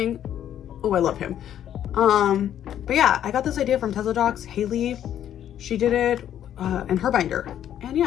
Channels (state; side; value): quieter; right; 10.6 dB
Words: Oh, I love him. But yeah, I got this idea from Tesla Docs. Haley, she did it in her binder, and